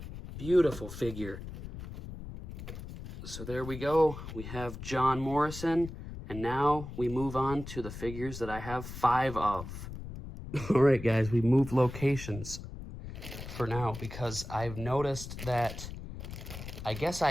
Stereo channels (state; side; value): noise; left; rumble, 10 dB below the sound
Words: Beautiful figure. So there we go. We have John Morrison. And now we move on to the figures that I have 5 of. All right, guys, we moved locations for now because I've noticed that I guess